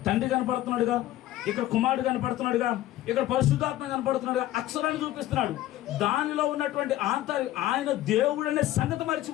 తండ్రి కనపడుతున్నాడుగా, ఇక్కడ కుమారుడు కనపడుతున్నాడుగా, ఇక్కడ పరిశుద్ధాత్మ కనపడుతున్నాడుగా, అక్షరాన్ని చూపిస్తున్నాడు. దానిలో ఉన్నటువంటి ఆయన దేవుడు అనే సంగతి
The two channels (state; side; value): quieter; right; 14.5 dB